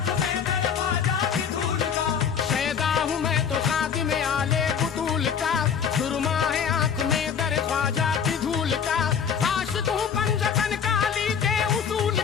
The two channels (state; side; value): quieter; right; 7.3 dB